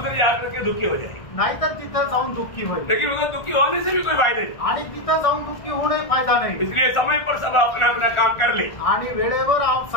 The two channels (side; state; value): right; late; 1.6 ms